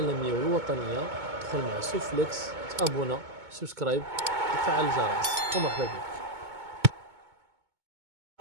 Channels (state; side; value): late; left; 2.2 ms